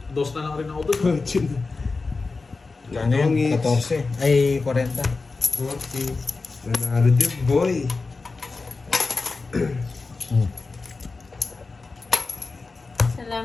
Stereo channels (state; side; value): quieter; right; 4.0 dB